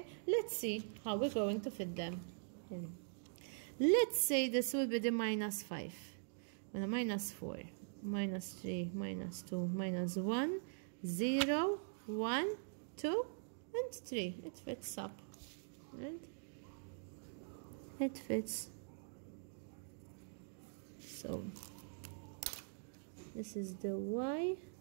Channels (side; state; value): left; silent; digital silence